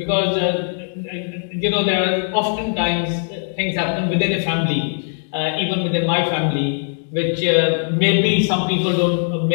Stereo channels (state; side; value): silent; right; digital silence